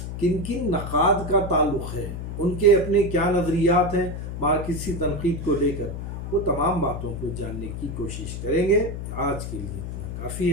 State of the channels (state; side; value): noise; left; hum, 6 dB below the sound